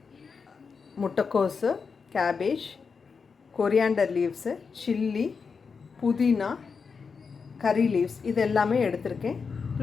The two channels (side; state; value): right; quieter; 5.4 dB